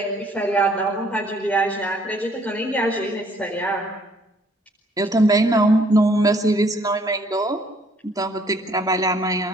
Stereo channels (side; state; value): both; normal; correlation 0.62